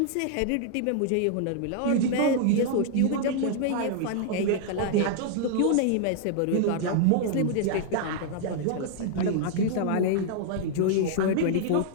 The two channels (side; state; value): both; different; correlation -0.01